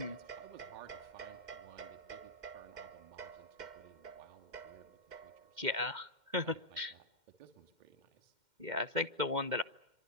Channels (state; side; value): late; left; 2.1 ms